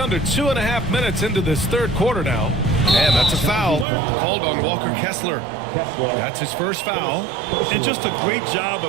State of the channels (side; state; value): left; drops out; at 3.9 s